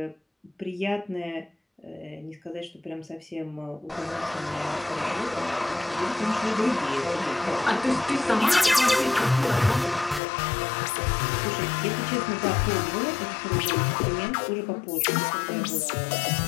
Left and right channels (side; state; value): right; drops out; at 10.2 s